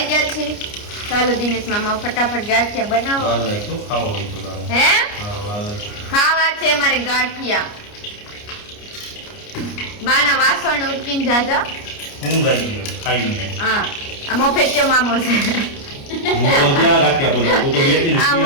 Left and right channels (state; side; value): late; right; 29 ms